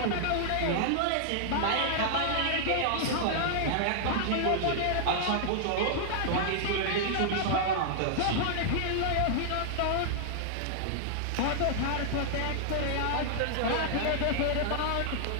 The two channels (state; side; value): different; both; correlation -0.01